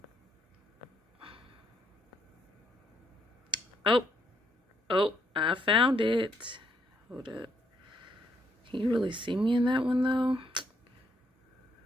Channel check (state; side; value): normal; both; correlation 0.73